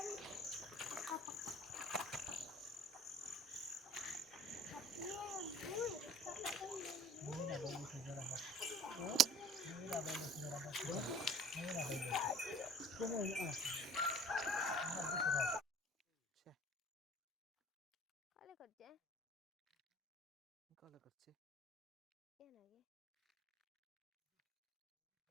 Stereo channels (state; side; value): normal; both; correlation 0.48